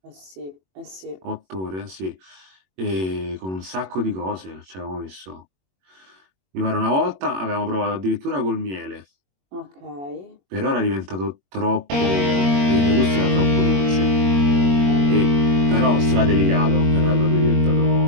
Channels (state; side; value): late; left; 21 ms